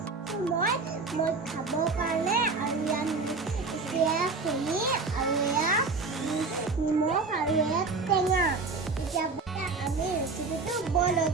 মই খাবৰ কাৰণে আৰু এয়া চেনি আৰু এয়া নিমখ আৰু এয়া টেঙা। এতিয়া আমি ৰেচিপিটো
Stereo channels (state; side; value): quieter; left; 4.1 dB